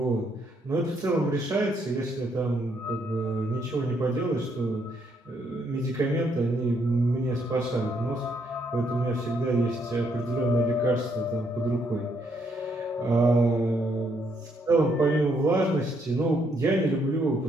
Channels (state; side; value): normal; both; correlation 0.73